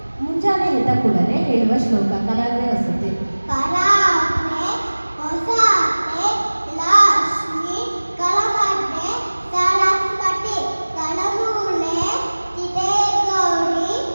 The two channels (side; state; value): both; inverted; correlation -1.00